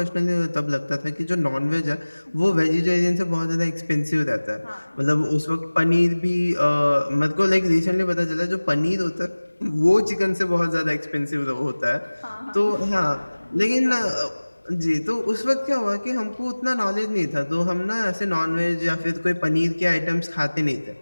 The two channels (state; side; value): inverted; both; correlation -1.00